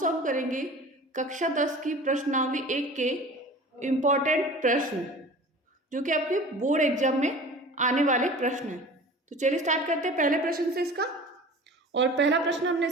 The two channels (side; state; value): both; normal; correlation 0.40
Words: करेंगे कक्षा 10 की प्रश्नावली 1 के इम्पोर्टेंट प्रश्न जो कि आपके बोर्ड एग्जाम में आने वाले प्रश्न हैं। तो चलिए स्टार्ट करते हैं पहले प्रश्न से इसका। और पहला प्रश्न हमने